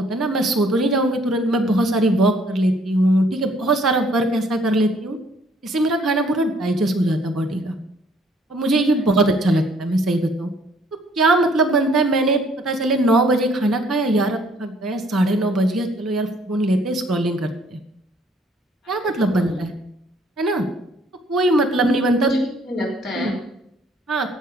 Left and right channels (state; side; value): normal; both; correlation 0.62